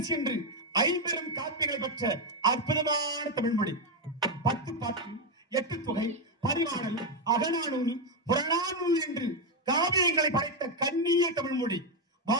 சென்று ஐம்பெரும் காப்பியங்களை பெற்ற அற்புதமான தமிழ்மொழி. 10 பாட்டு, 8 தொகை, பரிமாணல், அகநானூறு, புறநானூறு என்று காவியங்களை படைத்த கண்ணிய தமிழ்மொழி.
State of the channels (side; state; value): both; normal; correlation 0.05